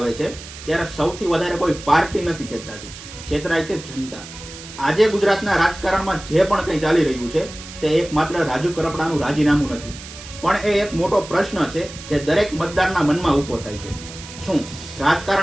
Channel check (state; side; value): noise; right; hiss, 14 dB below the sound